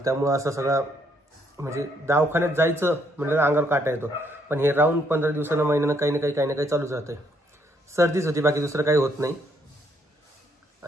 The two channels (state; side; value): normal; both; correlation 0.71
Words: त्यामुळं असं सगळं म्हणजे दवाखान्यात जायचं म्हटलं अंगावर काटा येतो. पण हे राहून 15 दिवसांना महिन्यानं काही ना काही चालूच राहतंय. सर्दीच होती बाकी दुसरं काही होत नाही.